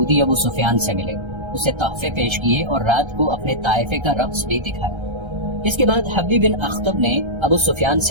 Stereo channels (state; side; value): late; left; 1.3 ms